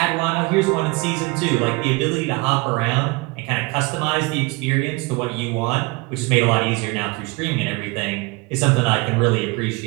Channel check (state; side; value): quieter; left; 25.9 dB